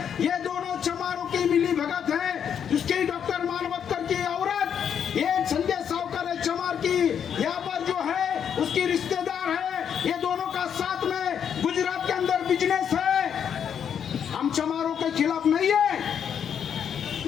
ये दोनों चमारों की मिली भगत है। उसकी डॉक्टर मानवतकर की औरत, ये संजय सावकर है चमार की, यहाँ पर जो है उसकी रिश्तेदार है, ये दोनों का साथ में गुजरात के अंदर बिजनेस है। हम चमारों के खिलाफ नहीं है,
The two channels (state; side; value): quieter; right; 8.2 dB